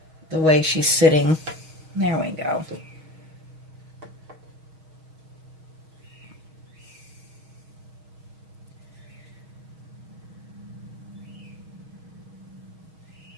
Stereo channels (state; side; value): late; left; 6.3 ms